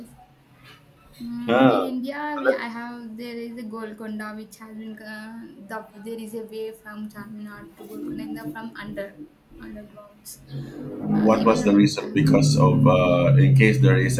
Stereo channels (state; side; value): identical; both; correlation 1.00